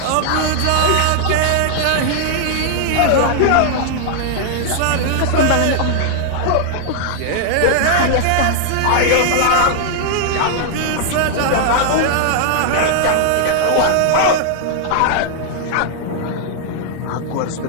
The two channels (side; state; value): both; different; correlation -0.01